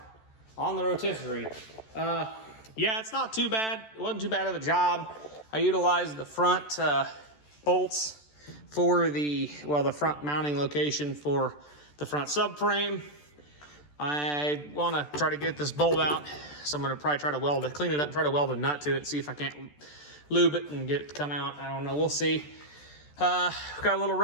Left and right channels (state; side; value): late; right; 14 ms